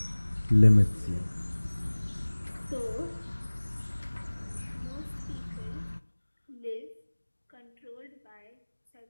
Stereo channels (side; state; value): both; inverted; correlation -1.00